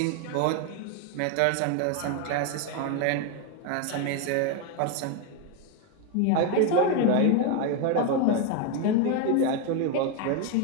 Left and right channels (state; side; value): different; both; correlation 0.02